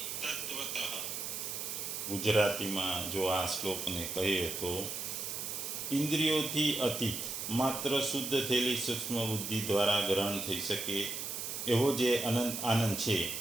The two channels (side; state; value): right; noise; hiss, 4 dB below the sound